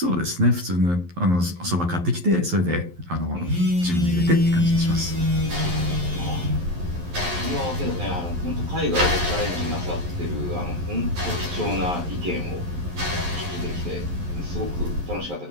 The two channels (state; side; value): late; left; 11 ms